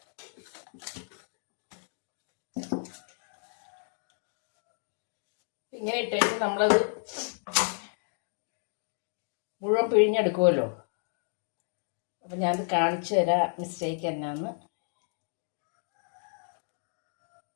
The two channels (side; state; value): right; silent; 57 dB below the other